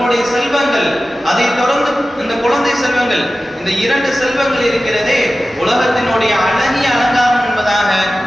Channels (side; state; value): both; normal; correlation 0.95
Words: செல்வங்கள், அதை தொடர்ந்து இந்த குழந்தை செல்வங்கள், இந்த 2 செல்வங்கள் இருக்கிறதே உலகத்தினுடைய அழகிய அலங்காரம் என்பதாக